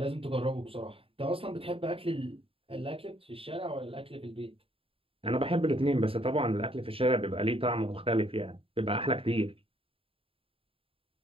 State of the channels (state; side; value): late; left; 0.27 ms